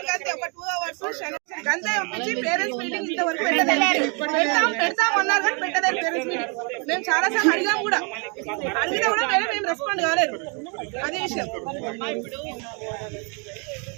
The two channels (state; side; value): quieter; left; 34.4 dB